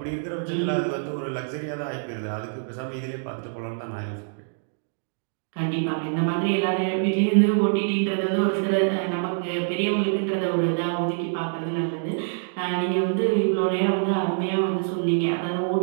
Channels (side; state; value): left; silent; digital silence